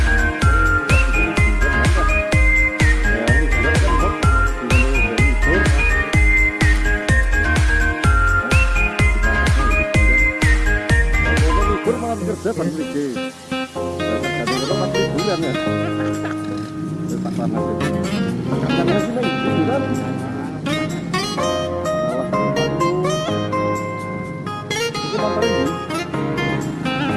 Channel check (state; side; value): identical; both; correlation 1.00